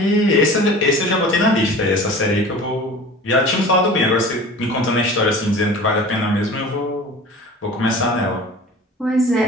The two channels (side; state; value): both; normal; correlation 0.40